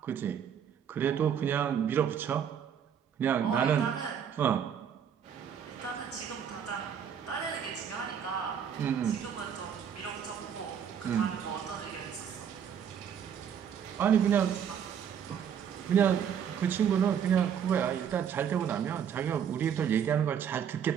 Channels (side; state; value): left; quieter; 8.3 dB